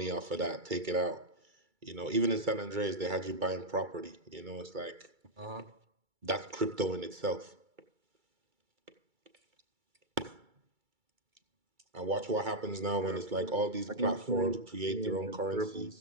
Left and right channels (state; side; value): late; left; 2.3 ms